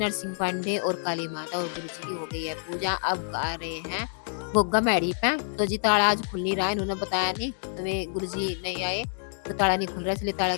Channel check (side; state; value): right; silent; digital silence